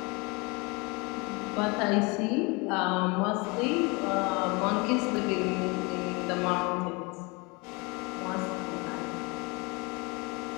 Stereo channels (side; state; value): right; quieter; 27.9 dB